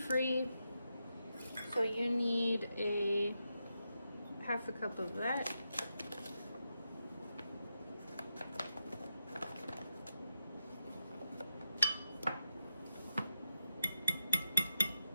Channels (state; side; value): inverted; both; correlation -0.87